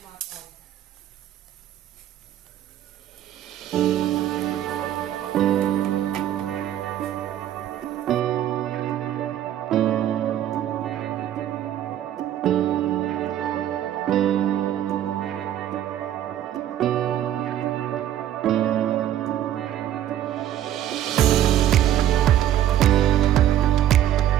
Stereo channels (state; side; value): quieter; left; 11.6 dB